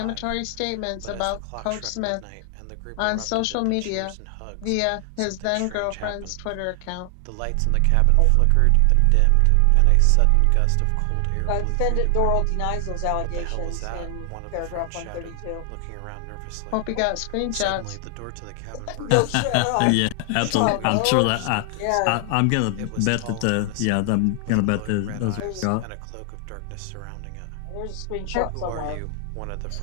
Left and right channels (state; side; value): different; both; correlation 0.00